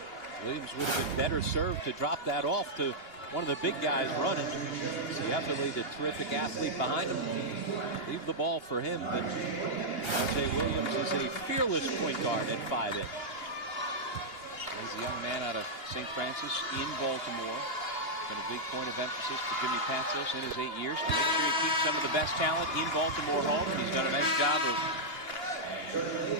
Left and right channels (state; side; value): late; right; 2.8 ms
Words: Williams would have been better served to drop that off to one of the big guys running. So you have to leave the terrific athlete behind him. Leave the ball for him, but R.J. Williams is a fearless point guard at 5'8". He's a young man out of St. Francis in Baltimore. Been a big point of emphasis for Jimmy Patsos in his 8 years to make sure he keeps some of the best talent in Baltimore home. And he's done a nice job of